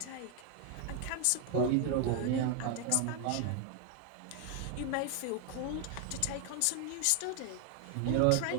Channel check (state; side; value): different; both; correlation 0.00